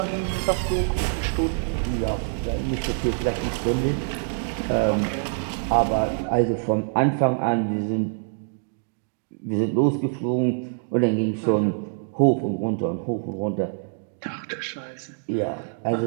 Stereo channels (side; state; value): left; silent; digital silence